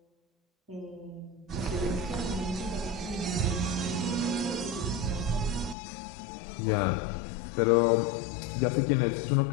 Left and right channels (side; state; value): right; drops out; at 5.8 s